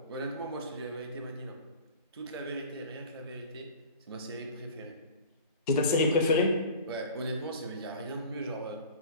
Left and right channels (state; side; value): inverted; both; correlation -0.41